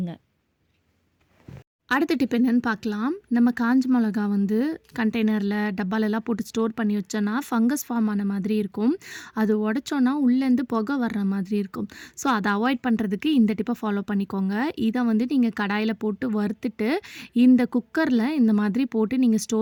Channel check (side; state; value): both; identical; correlation 1.00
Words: அடுத்த டிப் என்னென்னு பார்க்கலாம். நம்ம காஞ்ச மிளகா வந்து கண்டெய்னரில் டப்பாலெல்லாம் போட்டு ஸ்டோர் பண்ணி வச்சோன்னா ஃபங்கஸ் ஃபார்ம் ஆன மாதிரி இருக்கும். அது உடச்சோன்னா உள்ளேருந்து புகை வர்ற மாதிரி இருக்கும். ஸோ அதை அவாய்ட் பண்ணுறதுக்கு இந்த டிப்பை ஃபாலோ பண்ணிக்கோங்க. இதை வந்து நீங்கள் கடாயில் போட்டு வறுத்துட்டு இந்த குக்கரில் இந்த மாதிரி போட்டு நீங்கள்